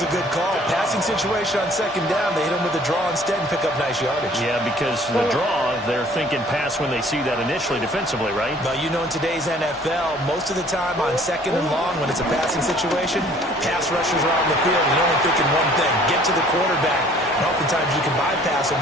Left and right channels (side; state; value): both; normal; correlation 0.55